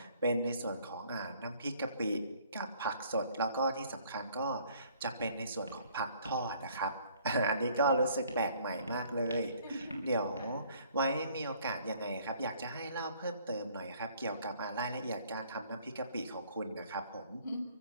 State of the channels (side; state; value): both; inverted; correlation -0.59